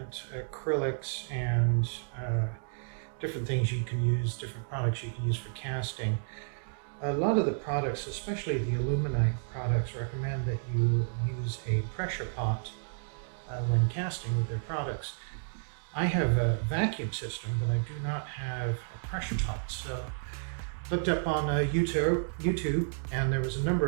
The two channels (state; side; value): silent; left; digital silence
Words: acrylics and different things you can use, different products you can use for casting, a lot of the products, especially the aluminite products, recommend that you use a pressure pot when casting with their products. I have a vacuum system, but I do not have a pressure pot. So looked up on YouTube, and there was a